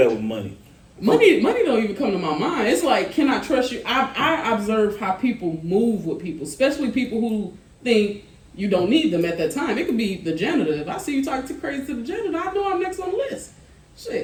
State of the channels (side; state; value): both; identical; correlation 1.00